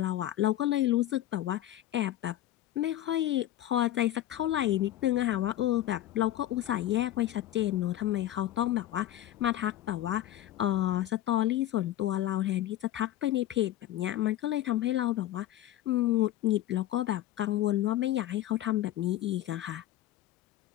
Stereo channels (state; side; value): quieter; right; 13.4 dB